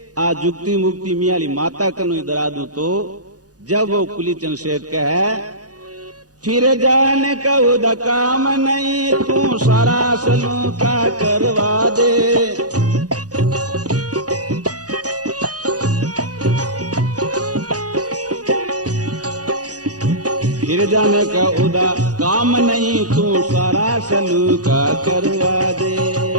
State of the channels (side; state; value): left; late; 0.68 ms